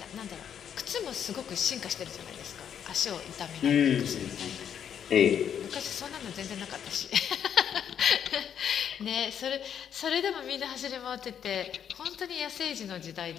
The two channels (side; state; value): right; quieter; 8.7 dB